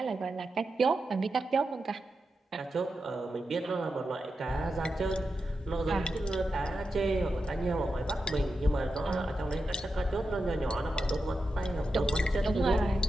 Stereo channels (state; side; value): normal; both; correlation 0.89